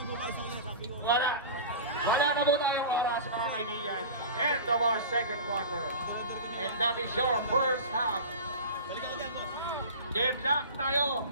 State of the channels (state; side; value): inverted; both; correlation -0.32